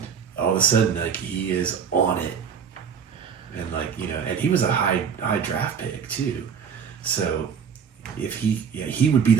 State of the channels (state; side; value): quieter; left; 7.0 dB